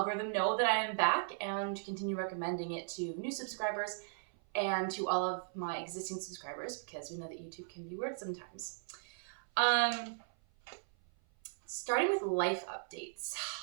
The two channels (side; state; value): left; silent; 53 dB below the other